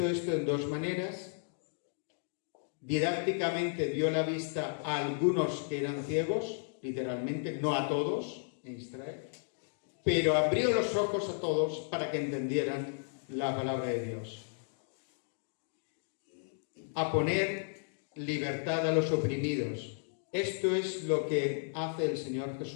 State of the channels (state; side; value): silent; right; digital silence